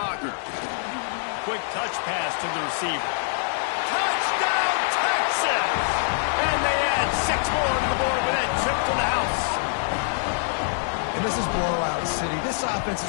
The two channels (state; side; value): silent; right; digital silence